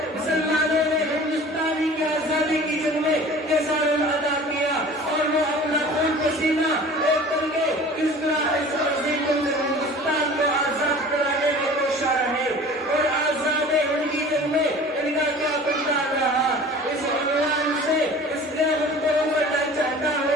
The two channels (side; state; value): both; normal; correlation 0.43